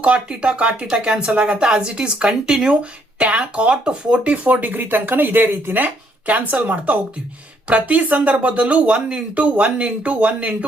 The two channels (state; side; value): normal; both; correlation 0.69